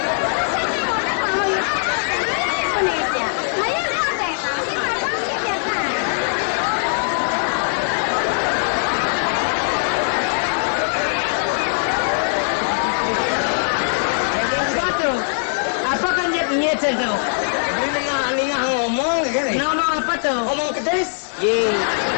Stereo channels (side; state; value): right; silent; digital silence